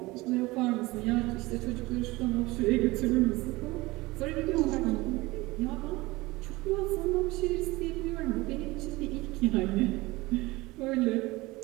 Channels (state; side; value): quieter; left; 21.2 dB